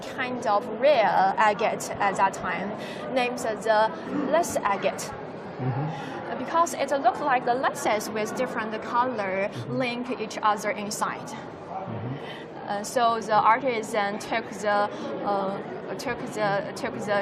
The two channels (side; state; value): both; identical; correlation 1.00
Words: kind of rare agate at that time, named the lace agate. Because it looks like the laces with different color link each other inside. So the artisan took the